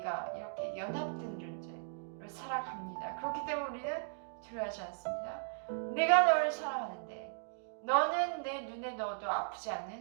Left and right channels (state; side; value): silent; left; digital silence